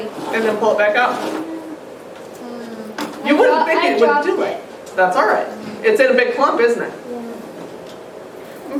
and then pull it back out. You wouldn't think it would do it. That's all right. It's in a big clump, isn't it? And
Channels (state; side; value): identical; both; correlation 1.00